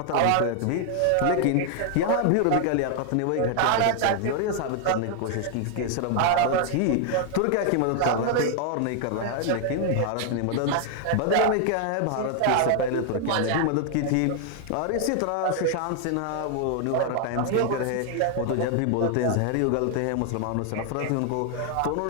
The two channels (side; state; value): both; different; correlation 0.00